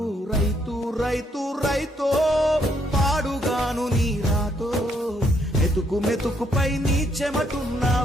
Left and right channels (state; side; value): normal; both; correlation 0.72